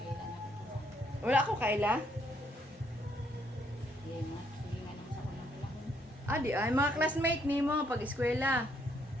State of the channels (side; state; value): both; normal; correlation 0.71